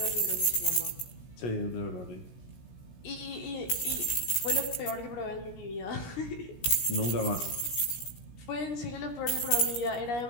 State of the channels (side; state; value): right; late; 17 ms